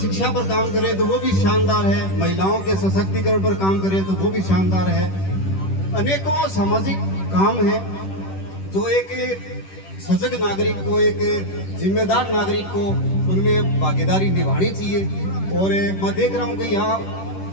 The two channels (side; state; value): right; late; 10 ms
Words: पर काम करें तो वो भी शानदार है, महिलाओं के सशक्तिकरण पर काम करें तो वो भी शानदार है। अनेकों सामाजिक काम है जो एक सजग नागरिक को, एक जिम्मेदार नागरिक को उनमें भागीदारी निभानी चाहिए। और मैं देख रहा हूँ कि यहाँ